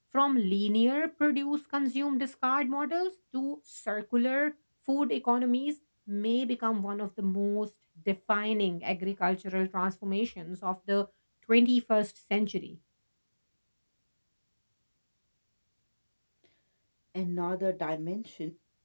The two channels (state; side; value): inverted; both; correlation -1.00